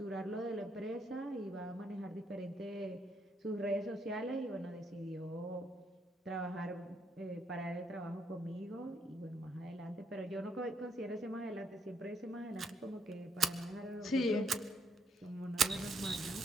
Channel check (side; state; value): both; normal; correlation 0.73